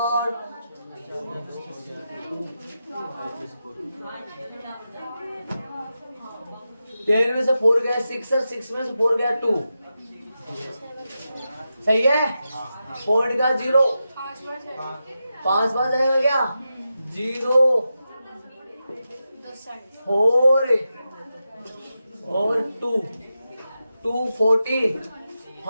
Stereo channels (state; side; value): inverted; both; correlation -0.90